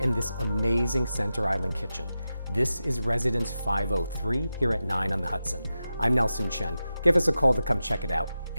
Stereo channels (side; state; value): both; inverted; correlation -0.92